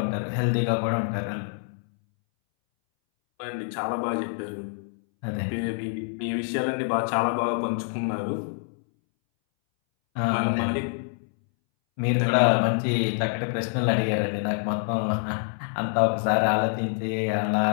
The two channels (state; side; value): silent; right; 61 dB below the other